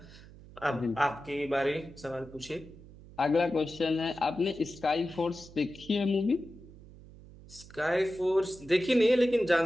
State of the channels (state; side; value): noise; right; hum, 20 dB below the sound